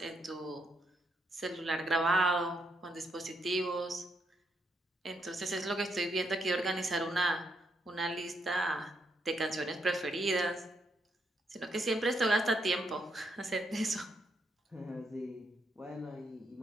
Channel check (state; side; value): normal; both; correlation 0.77